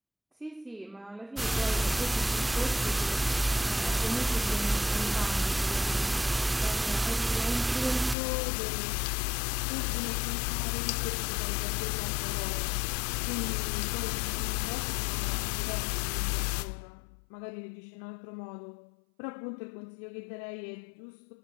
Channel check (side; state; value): right; drops out; at 8.2 s